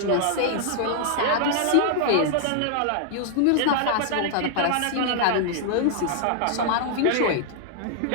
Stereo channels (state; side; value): different; both; correlation -0.01